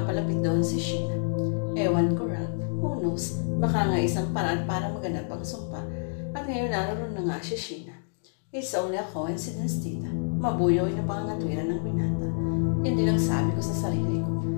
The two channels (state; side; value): silent; right; digital silence